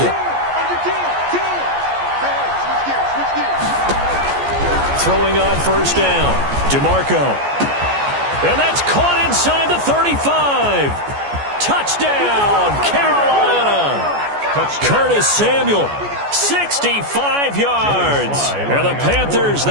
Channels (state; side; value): late; left; 14 ms